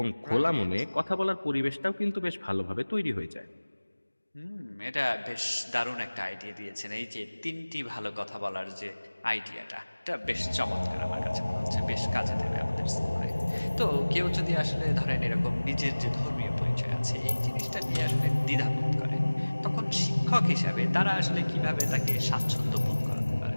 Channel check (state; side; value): inverted; both; correlation -1.00